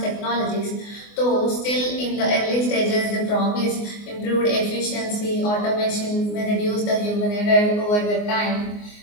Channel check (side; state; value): right; late; 24 ms